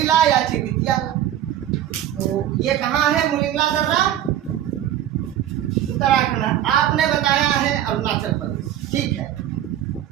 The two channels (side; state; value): left; quieter; 11.5 dB